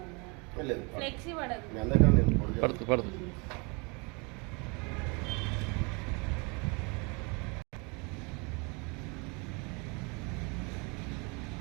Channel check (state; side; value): quieter; left; 30.8 dB